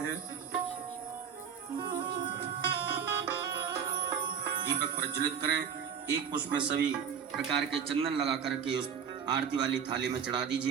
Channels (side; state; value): left; quieter; 7.5 dB